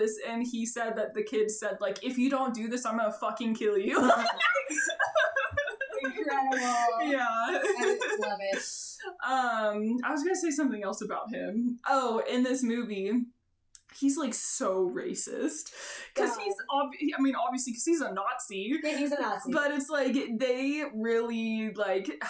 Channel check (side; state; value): both; identical; correlation 1.00